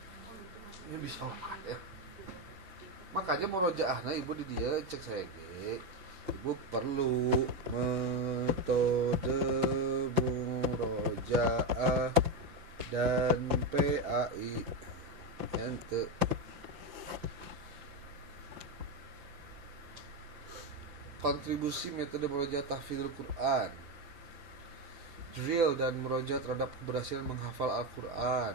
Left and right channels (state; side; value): late; left; 5.9 ms